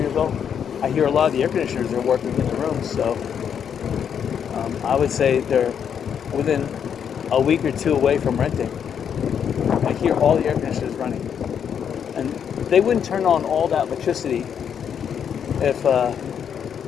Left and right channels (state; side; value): quieter; right; 8.0 dB